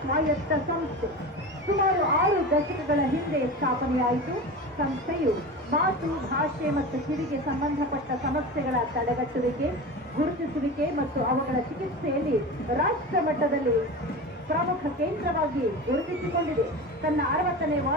ಸ್ವಾಯತ್ತ ಸಂಸ್ಥೆ. ಸುಮಾರು 6 ದಶಕಗಳ ಹಿಂದೆ ಸ್ಥಾಪನೆಯಾಯಿತು. ಸಂಸ್ಥೆಯು ಮಾತು, ಭಾಷೆ ಮತ್ತು ಕಿವಿಗೆ ಸಂಬಂಧಪಟ್ಟ ಸಮಸ್ಯೆಗಳ ತಡೆಗಟ್ಟುವಿಕೆ, ಗುರುತಿಸುವಿಕೆ ಮತ್ತು ಅವುಗಳ ಚಿಕಿತ್ಸೆಯಲ್ಲಿ ರಾಷ್ಟ್ರ ಮಟ್ಟದಲ್ಲಿ ಪ್ರಮುಖ ಕೇಂದ್ರವಾಗಿ ಗುರುತಿಸಿಕೊಂಡಿದೆ. ತನ್ನ 60ನೇ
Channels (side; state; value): both; normal; correlation 0.29